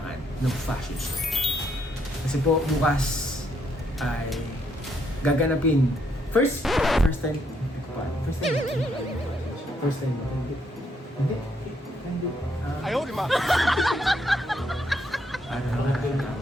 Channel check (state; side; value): normal; both; correlation 0.74